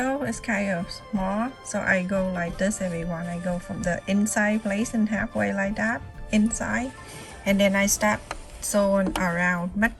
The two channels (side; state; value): both; identical; correlation 1.00